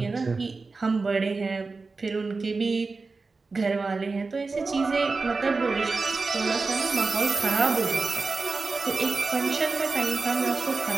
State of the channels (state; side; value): quieter; left; 4.0 dB